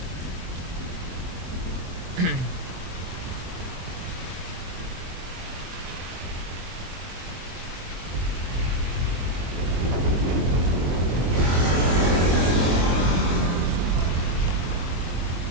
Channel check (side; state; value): left; late; 23 ms